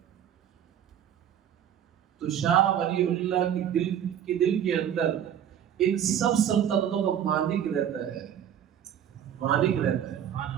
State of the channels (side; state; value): left; quieter; 9.7 dB